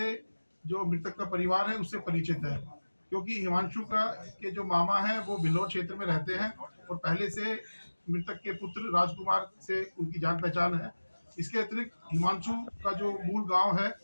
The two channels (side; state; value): both; inverted; correlation -1.00